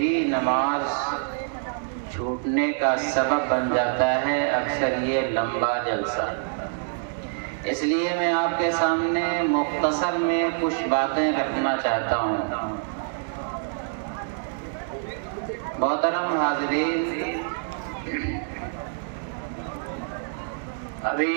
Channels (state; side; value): silent; left; 61 dB below the other